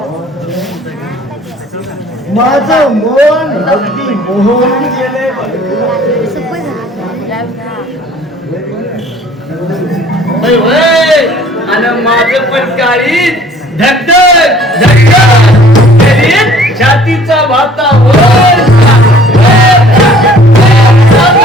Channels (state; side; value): normal; both; correlation 0.54